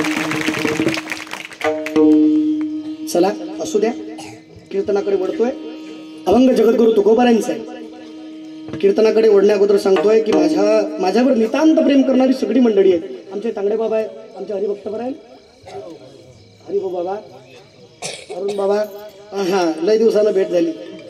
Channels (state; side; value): identical; both; correlation 1.00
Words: चला असू द्या. कीर्तनाकडे वळतोय. अभंग जगद्गुरु तुकोबारांचा आहे. कीर्तनाकडे वळण्या अगोदर सांगतोय की माझ्यावर नितांत प्रेम करणारी सगळी मंडळी आहे. आमचे तांगडे बाबा आहे, आमचे हरिभक्त आहे, हरिभो बाबा, अरुण बाबा. हा लय दिवसानं भेट झाली.